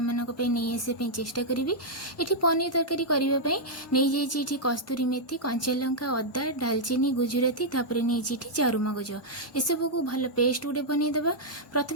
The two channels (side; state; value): both; normal; correlation -0.05